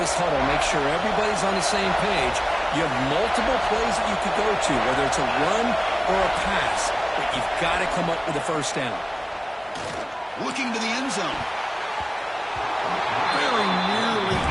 huddle, make sure everybody's on the same page. You have multiple plays that you could go to, whether it's a run or a pass, but you've got to come up with a first down. Looking to the end zone. Very nearly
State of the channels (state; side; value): identical; both; correlation 1.00